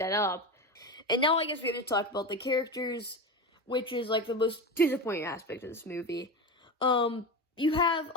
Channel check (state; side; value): normal; both; correlation 0.22